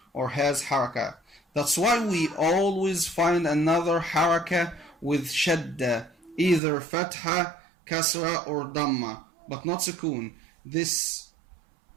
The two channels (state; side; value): drops out; left; at 6.6 s